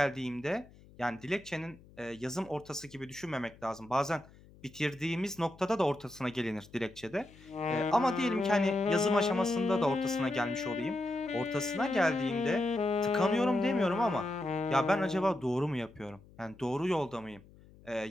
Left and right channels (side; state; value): left; noise; hum, 24 dB below the sound